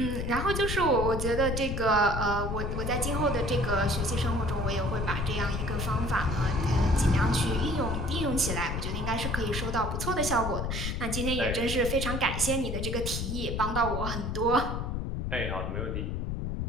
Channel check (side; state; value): left; noise; rumble, 2 dB below the sound